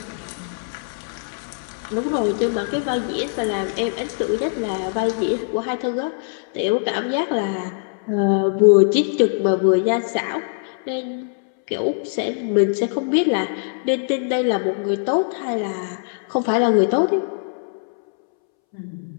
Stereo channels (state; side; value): silent; right; 64 dB below the other